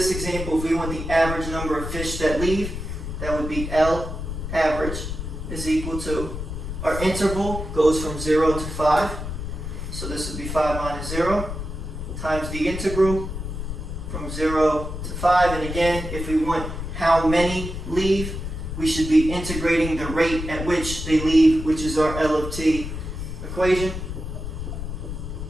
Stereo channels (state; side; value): noise; left; rumble, 6 dB below the sound